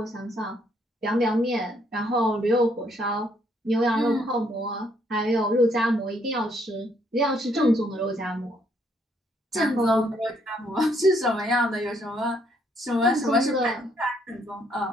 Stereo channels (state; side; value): normal; both; correlation 0.70